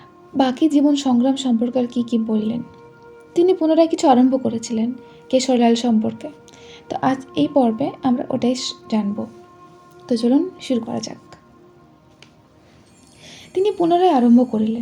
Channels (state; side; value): identical; both; correlation 1.00